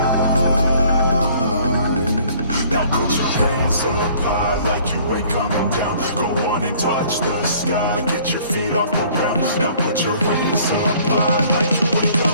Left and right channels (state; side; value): inverted; both; correlation -0.56